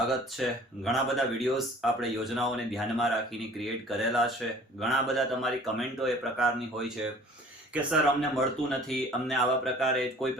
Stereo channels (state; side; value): normal; both; correlation 0.49